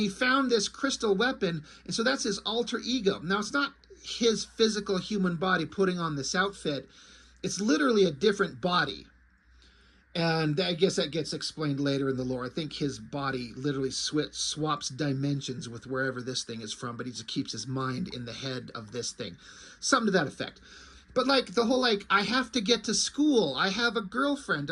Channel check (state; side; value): identical; both; correlation 1.00